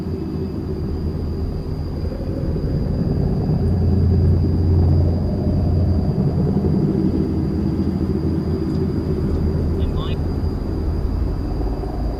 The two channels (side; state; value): both; identical; correlation 1.00